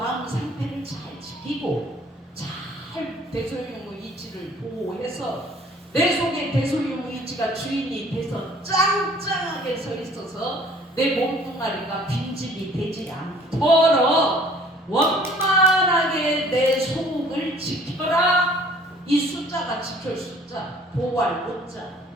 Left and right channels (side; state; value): both; normal; correlation 0.54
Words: 상태를 잘 지키고 잘 대소유무이치를 보호해서 내 속에 대소유무이치가 주인이 돼서 짱짱하게 서 있어서 내 몸뚱아리가 빈집이 되지 않도록 원만하게 내 속을 지켜라. 이 숫자가 지킬 숫자, 보호할 못자.